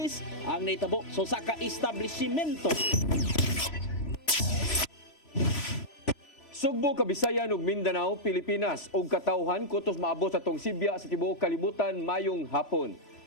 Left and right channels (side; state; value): right; late; 3.0 ms